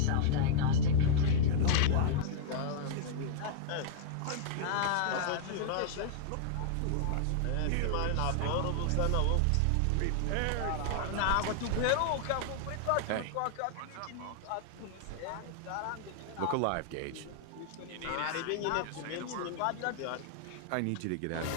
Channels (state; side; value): different; both; correlation -0.01